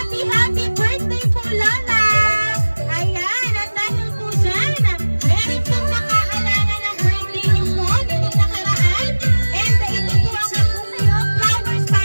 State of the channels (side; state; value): both; inverted; correlation -1.00